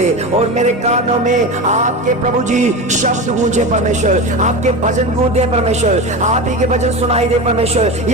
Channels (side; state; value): both; normal; correlation 0.24